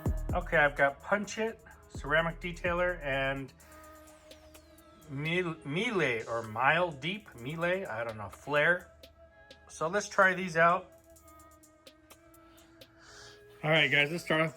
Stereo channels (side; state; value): both; identical; correlation 1.00